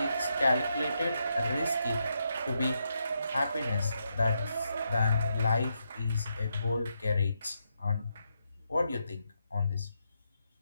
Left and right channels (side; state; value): both; inverted; correlation -0.82